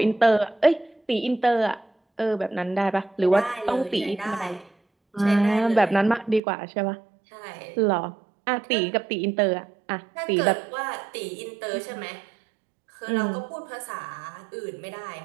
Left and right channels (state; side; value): drops out; left; at 6.4 s